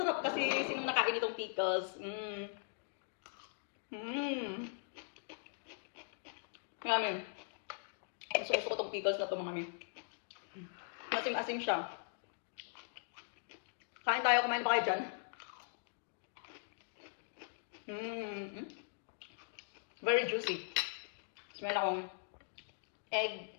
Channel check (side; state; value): right; silent; digital silence